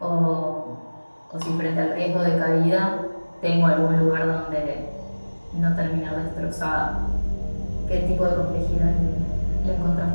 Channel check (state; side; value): inverted; both; correlation -1.00